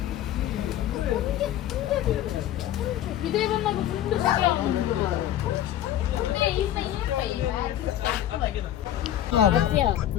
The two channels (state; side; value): quieter; right; 12.1 dB